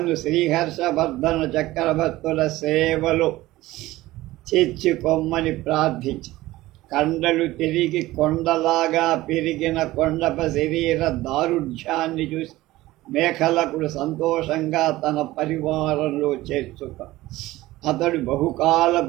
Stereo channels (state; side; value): quieter; left; 17.4 dB